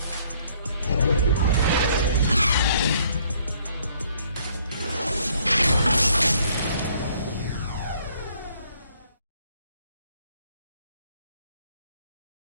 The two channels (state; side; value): inverted; both; correlation -0.64